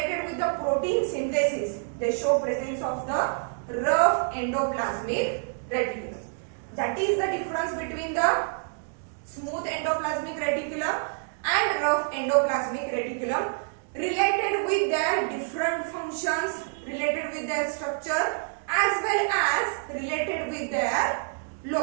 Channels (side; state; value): left; silent; 60 dB below the other